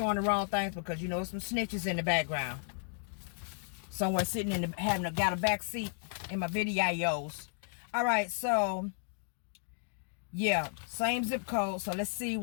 the wrong things because you know some snitches in the background. Somewhere sitting in the got a back seat in my videos. All right, so yeah, same zip code. So let's see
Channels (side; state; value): right; silent; 55 dB below the other